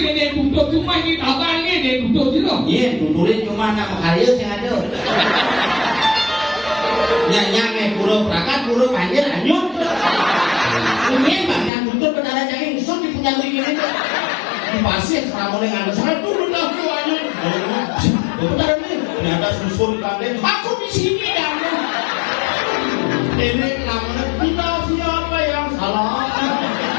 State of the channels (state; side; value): drops out; right; at 11.7 s